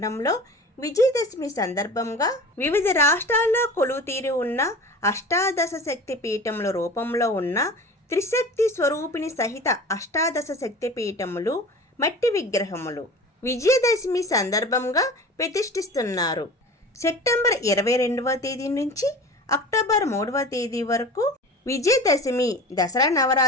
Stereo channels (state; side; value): normal; both; correlation 0.37